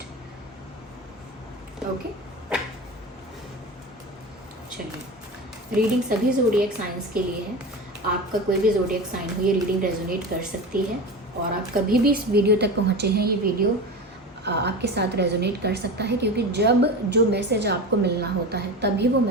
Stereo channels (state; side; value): normal; both; correlation 0.27